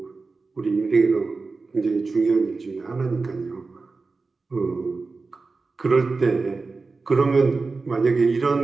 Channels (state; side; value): quieter; left; 4.0 dB